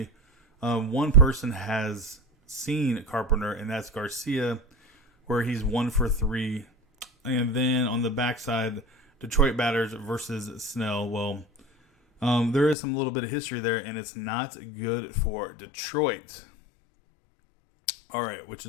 one person has seen Carpenter, and that's Garcia, where he's 1 for 3. And then on the backside, Detroit batters versus Snell. Well, there is some little bit of history there, and it's not good for Detroit. All right, which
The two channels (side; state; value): right; drops out; at 12.8 s